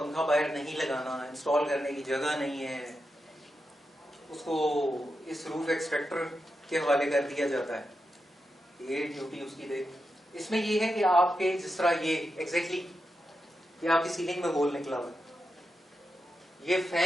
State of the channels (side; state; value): both; normal; correlation 0.88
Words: बाहर नहीं लगाना, इंस्टॉल करने की जगह नहीं है, उसको इस रूफ एक्सट्रैक्टर के हवाले कर दिया जाता है। ये ड्यूटी उसकी देख। इसमें ये है कि आपके जिस तरह ये एग्जैक्टली ये आपकी सीलिंग में होल निकला हुआ, ये